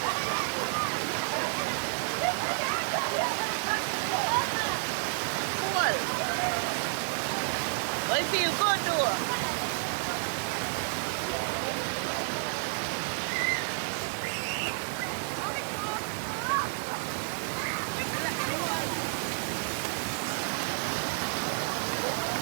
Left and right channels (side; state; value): left; silent; digital silence